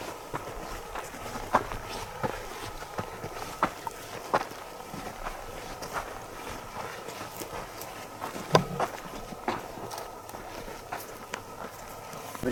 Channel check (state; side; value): identical; both; correlation 1.00